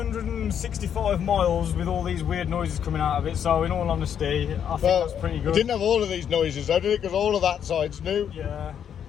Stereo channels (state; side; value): quieter; right; 8.7 dB